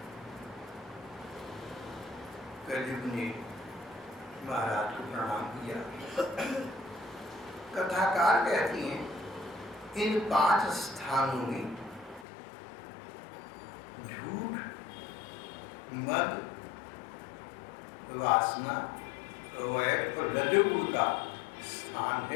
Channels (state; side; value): drops out; right; at 12.2 s